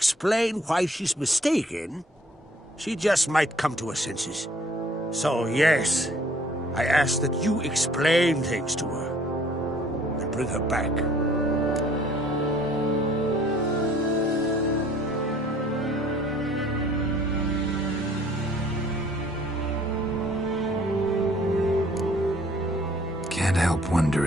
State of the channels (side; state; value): both; normal; correlation 0.57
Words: why she's mistaken, she just might come to her senses. So yes, I ask that you explain things to her and bring her back. Can't help